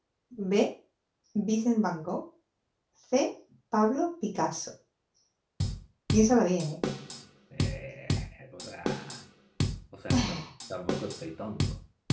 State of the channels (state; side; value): identical; both; correlation 1.00